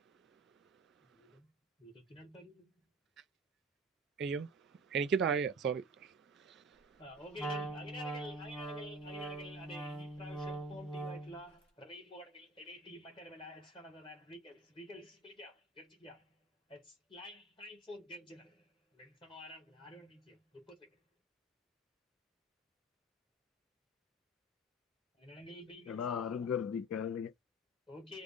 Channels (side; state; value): both; normal; correlation 0.37